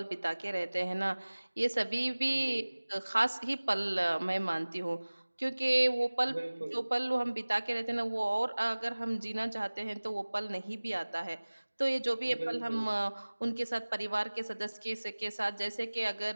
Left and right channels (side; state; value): both; inverted; correlation -1.00